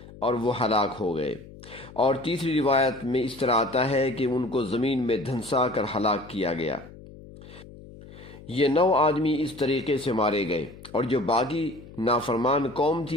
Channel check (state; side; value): noise; left; hum, 18 dB below the sound